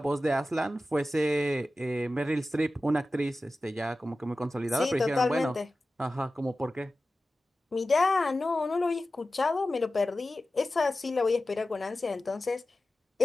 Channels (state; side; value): normal; both; correlation 0.94